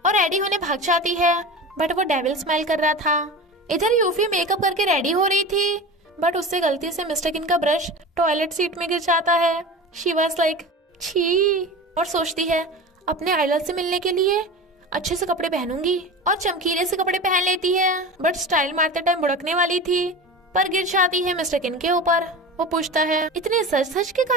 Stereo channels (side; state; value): both; normal; correlation 0.31